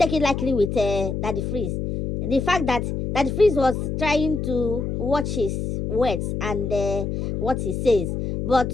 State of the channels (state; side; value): noise; left; hum, 3 dB below the sound